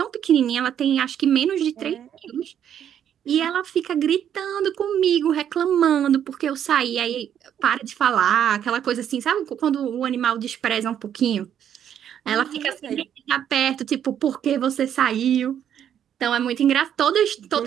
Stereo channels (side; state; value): left; quieter; 9.5 dB